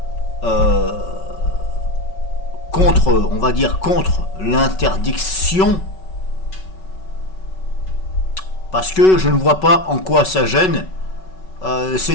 contre, on va dire contre l'interdiction? Parce que je ne vois pas en quoi ça gêne.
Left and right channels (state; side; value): late; right; 5.3 ms